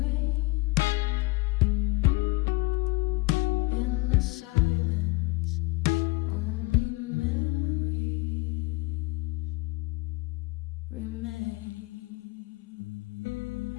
in the silence. Only memories remain.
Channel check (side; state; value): right; quieter; 23.6 dB